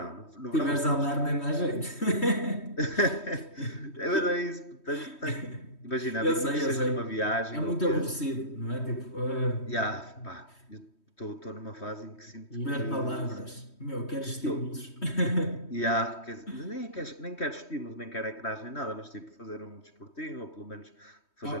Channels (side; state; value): right; late; 3.2 ms